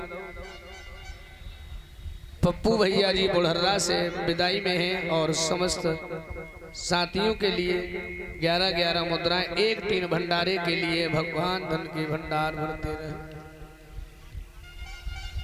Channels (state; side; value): identical; both; correlation 1.00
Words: पप्पू भैया जी बुढ़र्रा से विदाई में हैं और समस्त साथियों के लिए 11-11 मुद्राएं, 1-3 भंडारे के लिए। भगवान धन के भंडार भरते रहे।